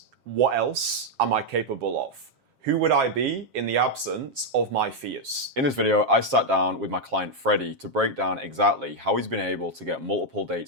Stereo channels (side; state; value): left; late; 7.4 ms